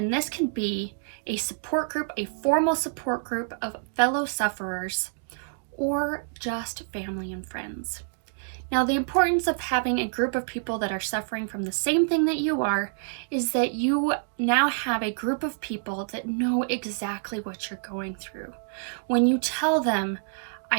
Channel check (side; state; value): left; silent; digital silence